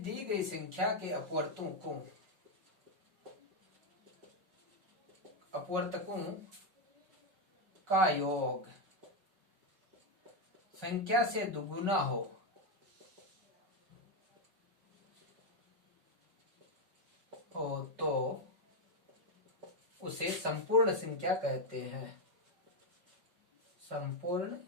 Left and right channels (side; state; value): left; late; 5.3 ms